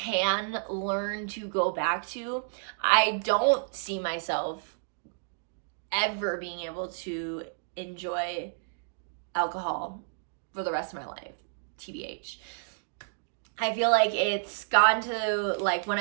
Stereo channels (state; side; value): silent; left; digital silence